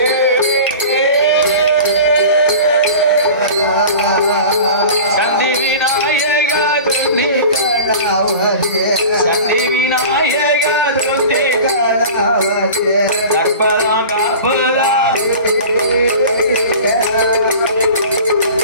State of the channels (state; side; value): inverted; both; correlation -0.37